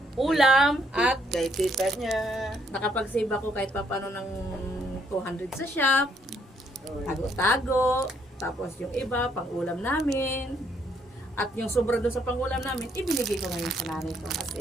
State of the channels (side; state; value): both; normal; correlation 0.70